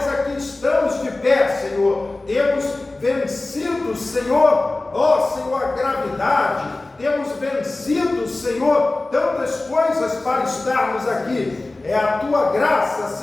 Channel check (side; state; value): right; quieter; 3.0 dB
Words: aqui estamos de pé, Senhor. Temos vencido, Senhor, ó Senhor, a gravidade, temos vencido, Senhor, tantas coisas para estarmos aqui. É a Tua graça,